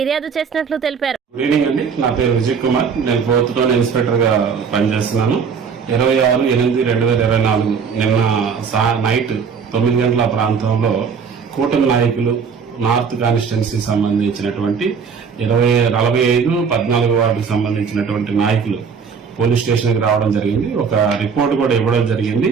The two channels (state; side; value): quieter; left; 6.1 dB